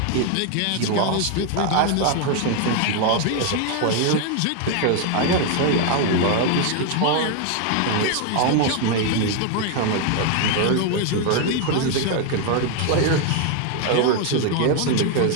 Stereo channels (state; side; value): different; both; correlation 0.00